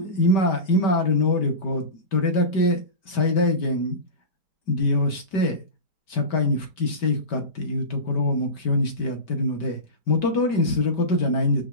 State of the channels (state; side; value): late; right; 5.2 ms